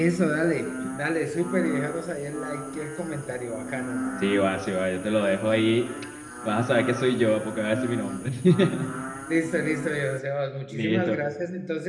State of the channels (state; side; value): identical; both; correlation 1.00